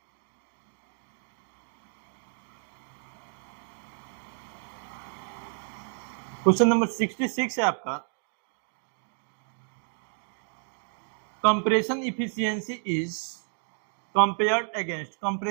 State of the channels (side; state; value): left; silent; 57 dB below the other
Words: क्वेश्चन नंबर 66 है आपका, compression efficiency is compared against,